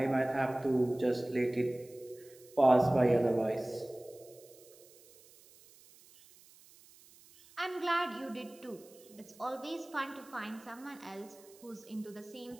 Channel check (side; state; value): right; noise; hiss, 24 dB below the sound